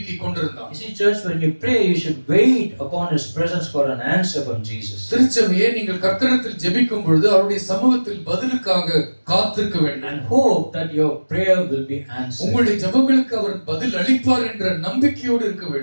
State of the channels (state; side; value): inverted; both; correlation -1.00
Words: கொண்டிருந்தான். You see, church, when you pray, you should wait upon His presence for an answer from Jesus. திருச்சபையே, நீங்கள் கர்த்தரிடத்தில் ஜெபிக்கும் பொழுது அவருடைய சமூகத்தில் பதிலுக்காக காத்திருக்க வேண்டும். And hope that your prayer will be answered. உங்களுடைய ஜெபங்களுக்கு அவர் பதில் அளிப்பார் என்ற நம்பிக்கையோடு இருக்க